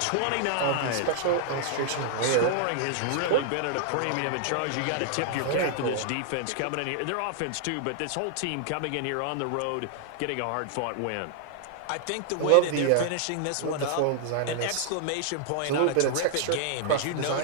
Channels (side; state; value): both; different; correlation 0.00